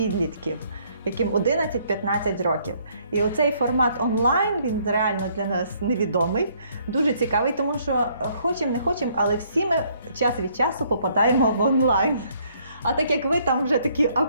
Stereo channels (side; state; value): both; inverted; correlation -0.66